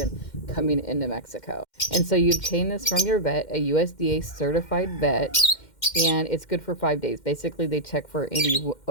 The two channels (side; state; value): right; late; 2.1 ms